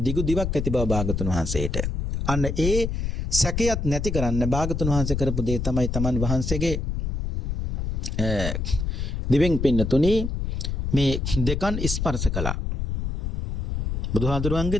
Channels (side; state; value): left; noise; rumble, 2 dB below the sound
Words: දිවක් ඇති බව භාගතුන් වහන්සේට. අන්න ඒ සැකයත් නැති කරන්න භාගතුන් වහන්සේ කරපු දේ තමයි තමන් වහන්සේගේ දිවෙන් පින්නතුනි මේ දෙකන් ස්පර්ශ කළා.